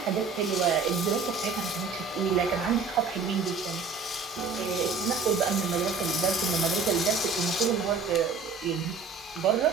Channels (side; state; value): left; quieter; 4.7 dB